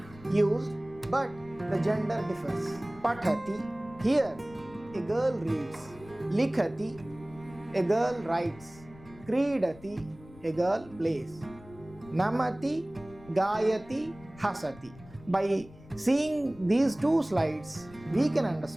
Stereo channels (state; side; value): noise; left; rumble, 21 dB below the sound